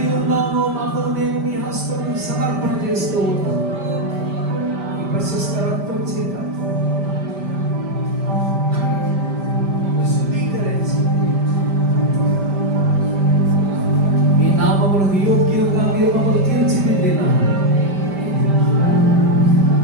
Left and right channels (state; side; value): late; left; 5.1 ms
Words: ఉన్నామో మమ్మల్ని మేము నీ హస్తము సమర్పణ చేస్తూ ఉన్నాం. ఈ ప్రశస్త రక్తం చేత శుద్ధీకరించి మీ నామములకు యోగ్యంగా మీరు మమ్మల్ని తీర్చిదిద్దిన